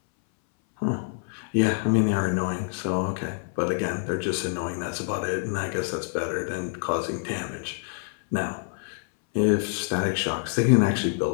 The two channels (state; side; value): silent; right; 61 dB below the other